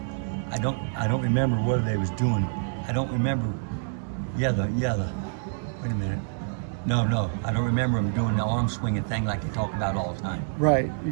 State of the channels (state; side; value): silent; left; 60 dB below the other